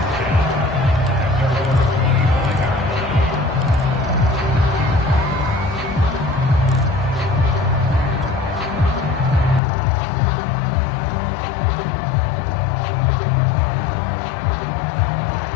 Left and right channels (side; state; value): right; drops out; at 9.6 s